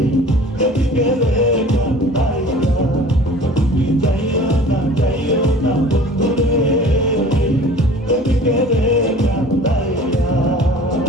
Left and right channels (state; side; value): normal; both; correlation 0.45